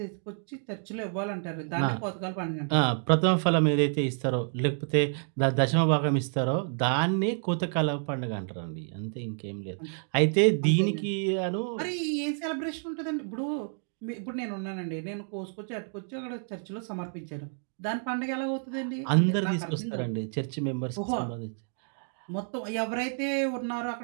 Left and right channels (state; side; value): silent; left; 58 dB below the other